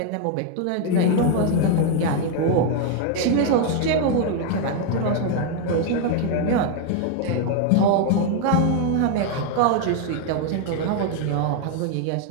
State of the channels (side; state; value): both; different; correlation 0.01